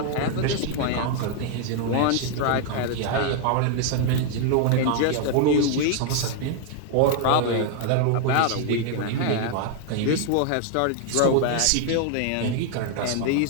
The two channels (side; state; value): both; different; correlation 0.00